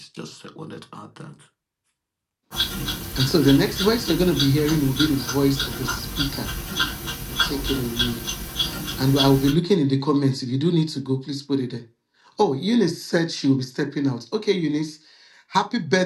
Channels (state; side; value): identical; both; correlation 1.00